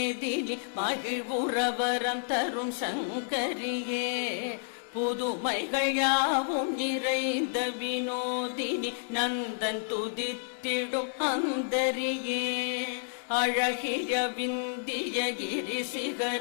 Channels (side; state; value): right; silent; digital silence